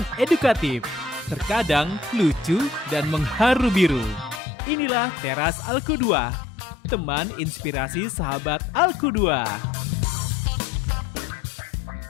edukatif. Terkadang lucu dan mengharu biru. Inilah Teras Alku 2, teman inspirasi sahabat Alku 2.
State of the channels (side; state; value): right; drops out; at 4.4 s